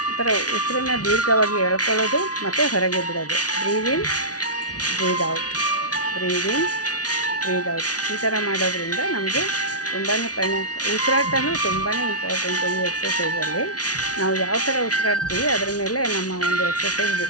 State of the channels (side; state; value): right; late; 0.68 ms